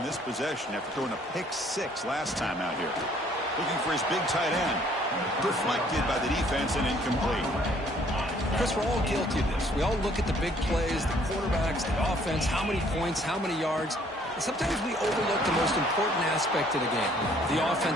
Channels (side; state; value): both; normal; correlation 0.61